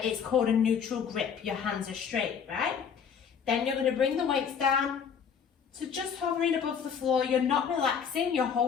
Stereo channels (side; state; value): right; quieter; 7.1 dB